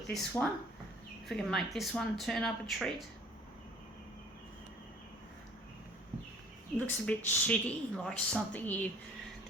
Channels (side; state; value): both; normal; correlation 0.52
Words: this one. If we can make this one turn up a treat. It looks a bit shitty, like something